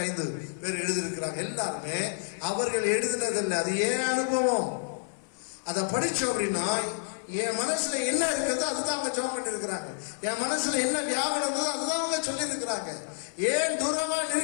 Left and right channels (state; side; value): silent; right; 59 dB below the other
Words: பேர் எழுதியிருக்கிறாங்க. எல்லாருமே அவர்கள் எழுதினதில்லை, அது ஏன் அனுபவம். அதை படிச்சோம் அப்படின்னா என் மனசுல என்ன இருக்கிறதோ அதுதான் அவங்க ஜெபம் பண்ணி இருக்கிறாங்க. என் மனசுல என்ன வியாபாரம் இருந்ததோ அதுதான் அவங்க சொல்லி இருக்கிறாங்க. ஏன் தூரமா